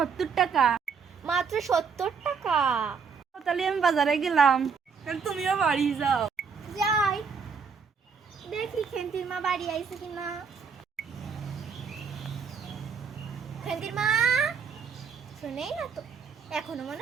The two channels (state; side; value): quieter; left; 5.9 dB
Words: টাকা। মাত্র 70 টাকা। তাহলে আমি বাজারে গেলাম, তুমিও বাড়ি যাও। যাই দেখি খেন্তির মা বাড়ি আইছে কিনা। খেন্তির মা শুনেই না তো, এখনো মনে